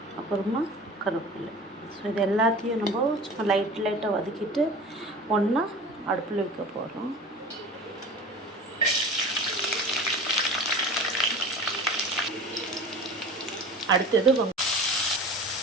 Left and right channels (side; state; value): both; normal; correlation 0.38